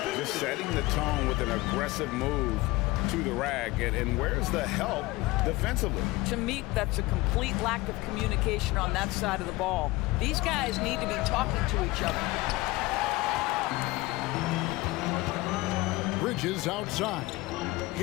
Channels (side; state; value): right; quieter; 20.8 dB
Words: Just setting the tone with an aggressive move to the rack. And where's the help defensively? To me, that's a complete lack of communication on that side of the ball. These guys need to be talking to each other. Bridges outside.